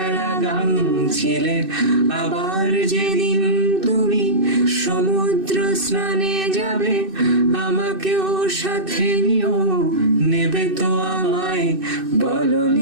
গান ছিলে। আবার যেদিন তুমি সমুদ্র স্নানে যাবে, আমাকেও সাথে নিও, নেবে তো আমায়, বলো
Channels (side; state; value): left; late; 2.6 ms